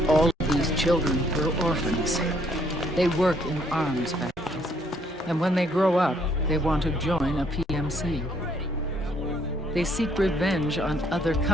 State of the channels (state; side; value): normal; both; correlation 0.67